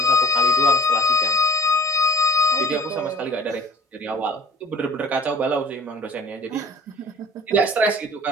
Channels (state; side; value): normal; both; correlation 0.48